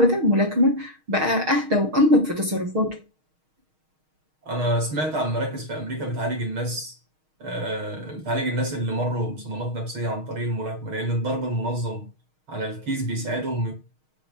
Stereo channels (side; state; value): left; late; 6.4 ms